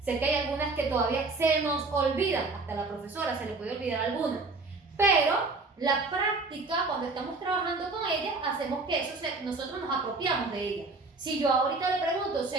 sé que hay algunas que todavía se nos olvidan, hasta a la profesora se le puede olvidar algunas, pero la práctica, cuando estamos trabajando con ellas, hacemos que nosotros nos apropiamos de ella. Si yo ahorita le pregunto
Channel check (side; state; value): left; quieter; 3.6 dB